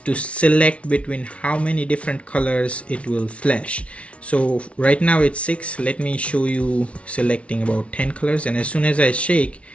select between how many different colors it will flash. So right now it's 6. Let me show you selecting about 10 colors, and as soon as I shake,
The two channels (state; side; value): late; right; 0.062 ms